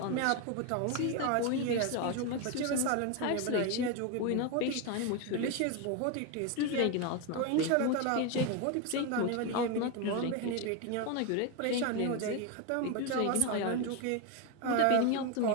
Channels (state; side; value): different; both; correlation 0.02